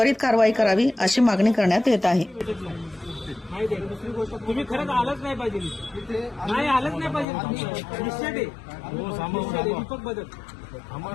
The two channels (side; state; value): right; drops out; at 7.2 s